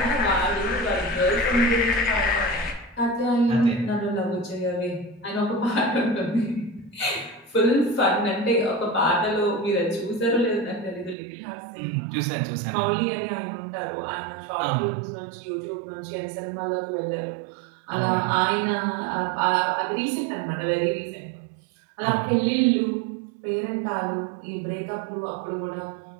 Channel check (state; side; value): drops out; left; at 11.2 s